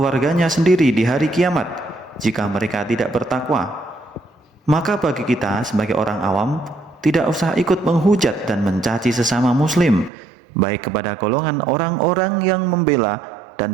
sendiri di hari kiamat jika mereka tidak bertakwa. Maka bagi kita sebagai orang awam, tidak usah ikut menghujat dan mencaci sesama muslim, baik kepada golongan orang-orang yang membela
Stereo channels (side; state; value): left; drops out; at 10.1 s